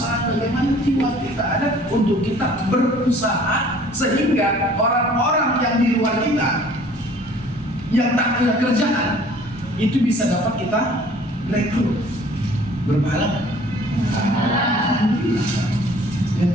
bagaimana jiwa kita ada untuk kita berusaha sehingga orang-orang yang di luar kita yang tak punya kerjaan itu bisa dapat kita rekrut. Berpahala. Ya,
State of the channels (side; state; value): both; normal; correlation 0.52